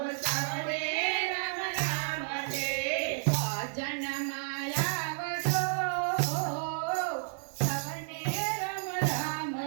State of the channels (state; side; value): silent; left; 57 dB below the other